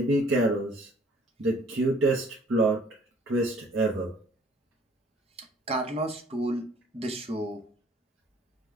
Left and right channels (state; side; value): normal; both; correlation 0.57